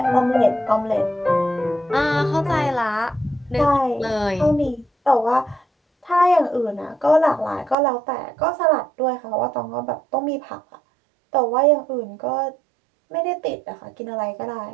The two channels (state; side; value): drops out; left; at 7.8 s